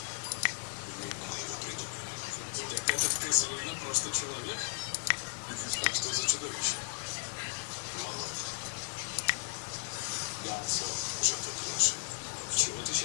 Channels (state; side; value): silent; right; 54 dB below the other